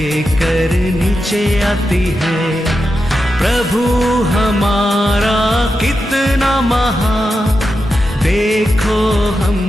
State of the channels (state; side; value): normal; both; correlation 0.89